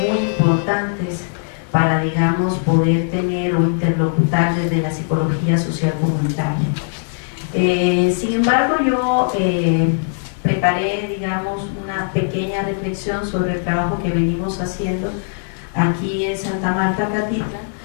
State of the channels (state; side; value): silent; right; digital silence